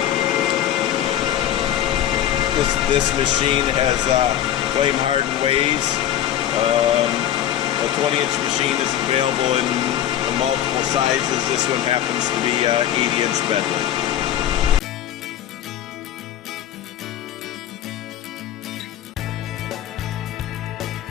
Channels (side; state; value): right; quieter; 11.3 dB